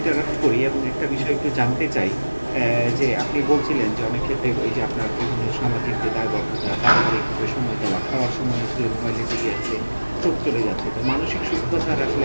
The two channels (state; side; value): inverted; both; correlation -1.00